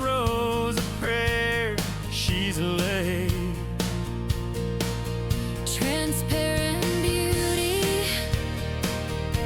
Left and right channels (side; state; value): both; identical; correlation 1.00